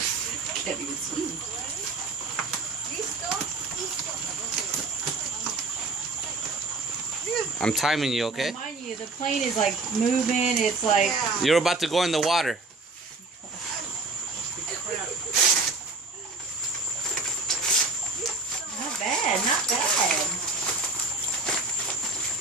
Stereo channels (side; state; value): left; quieter; 3.4 dB